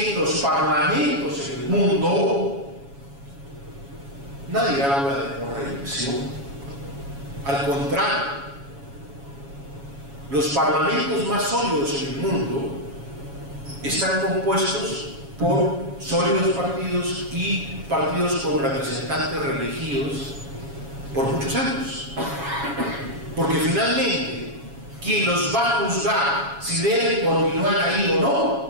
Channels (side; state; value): left; late; 7.2 ms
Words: en los parlamentos en el mundo nadie habla de no reelección. Al contrario, los parlamentos más sólidos en el mundo están compuestos por sólidos partidos y partidos con representantes reelegidos por muchos años. Porque finalmente quien los va a juzgar si deben continuar ahí o